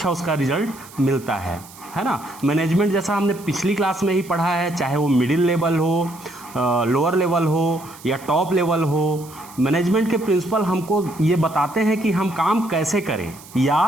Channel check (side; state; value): right; noise; hiss, 20 dB below the sound